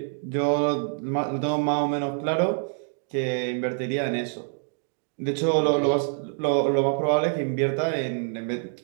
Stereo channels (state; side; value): silent; left; 61 dB below the other